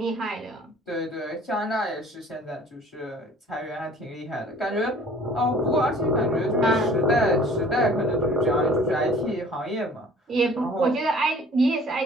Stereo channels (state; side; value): normal; both; correlation 0.50